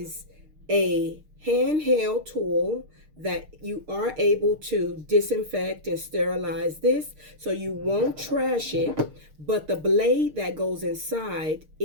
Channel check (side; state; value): left; late; 6.5 ms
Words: a handheld tool that you are able to disinfect and sterilize this, so you won't trash it, but the blade that goes inside